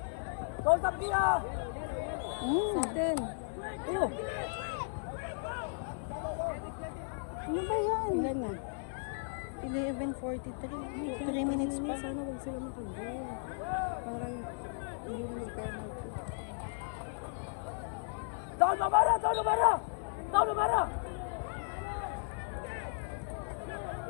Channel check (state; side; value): silent; right; digital silence